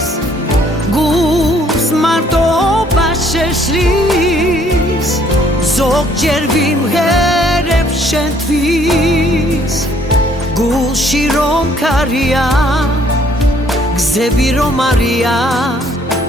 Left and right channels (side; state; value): both; normal; correlation 0.63